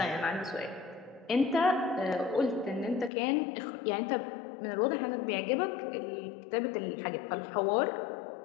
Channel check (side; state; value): right; drops out; at 3.1 s